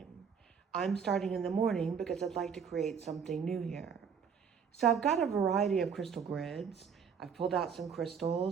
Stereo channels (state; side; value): quieter; left; 6.8 dB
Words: I'm starting in the morning because I'd like to create something new here. So I've got a variety of crystal grids. I've pulled out some